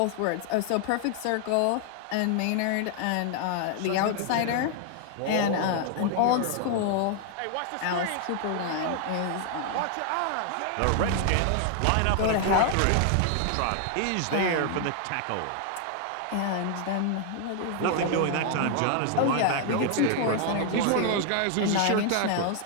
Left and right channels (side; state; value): both; different; correlation 0.00